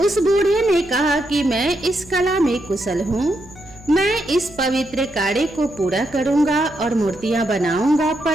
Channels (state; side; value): noise; right; hum, 22 dB below the sound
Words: बूढ़े ने कहा कि मैं इस कला में कुशल हूँ, मैं इस पवित्र कार्य को पूरा करूँगा और मूर्तियाँ बनाऊंगा,